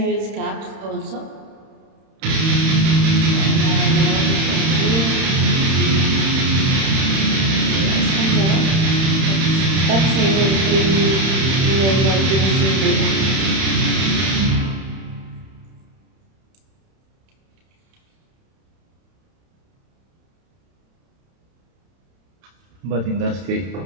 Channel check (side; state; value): left; late; 31 ms